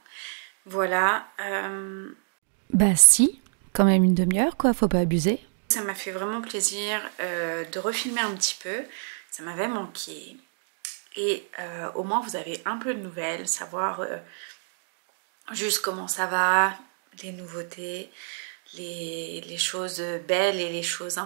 Voilà. Bah si, quand même une demi-heure quoi, faut pas abuser. Ça m'a fait vraiment plaisir de refilmer un petit peu. Ça m'avait manqué. Et au moins vous avez un peu de nouvelles, savoir juste comment ça va, les nouveautés, les choses belles et les choses un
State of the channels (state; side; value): silent; left; digital silence